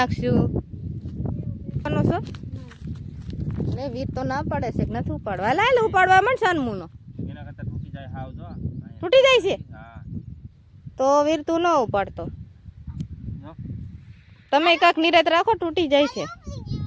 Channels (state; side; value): identical; both; correlation 1.00